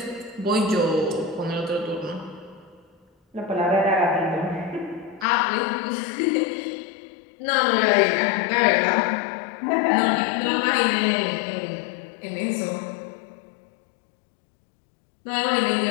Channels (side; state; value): right; drops out; at 5.2 s